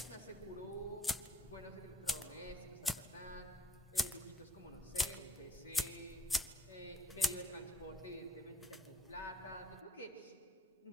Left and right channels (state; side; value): normal; both; correlation 0.68